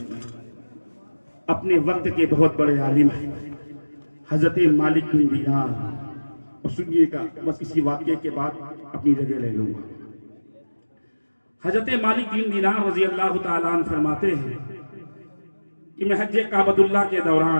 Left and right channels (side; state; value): both; inverted; correlation -1.00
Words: अपने वक्त के बहुत बड़े आलिम हजरत मालिक बिन दीनार, और सुनिएगा बस इसी वाक्य के बाद अपनी जगह ले लूंगा। हजरत मालिक बिन दीनार रज़ी अल्लाह ताला अन्हु फरमाते हैं कि मैं हज काबतुल्लाह के